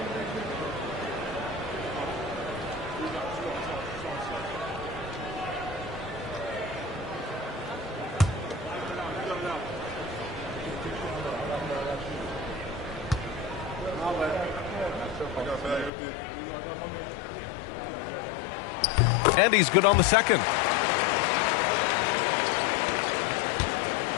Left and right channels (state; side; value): drops out; right; at 15.9 s